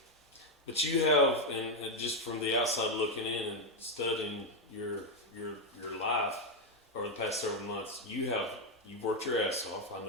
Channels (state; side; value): normal; both; correlation 0.04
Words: But you have, and just from the outside looking in and studying your life over the past several months, you've worked your ass off. I